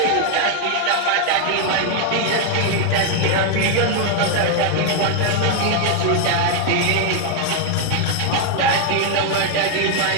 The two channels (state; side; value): different; both; correlation 0.00